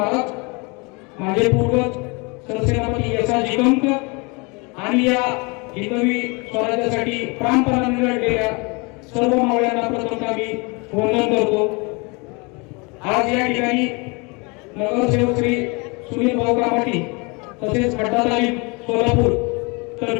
माझे पूर्वज सरसेनापती यशाजी कंक आणि या हिंदवी स्वराज्यासाठी प्राणपणाने लढलेल्या सर्व मावळ्यांना प्रथम मी वंदन करतो। आज या ठिकाणी नगरसेवक श्री सुनील भाऊ कामाटी तसेच खड्डा तालीम सोलापूर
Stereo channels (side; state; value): right; quieter; 29.3 dB